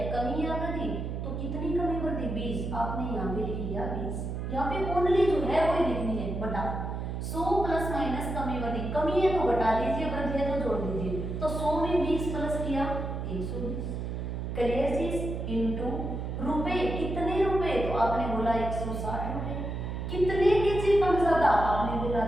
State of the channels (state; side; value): noise; right; hum, 4 dB below the sound